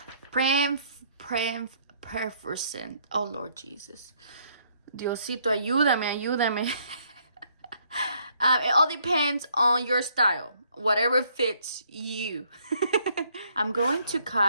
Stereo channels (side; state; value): both; inverted; correlation -0.67